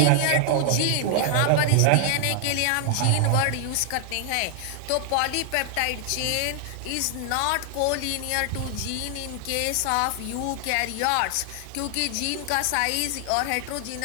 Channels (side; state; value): both; different; correlation 0.00